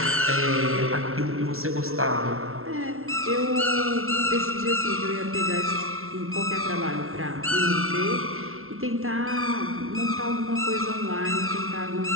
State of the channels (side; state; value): left; late; 0.62 ms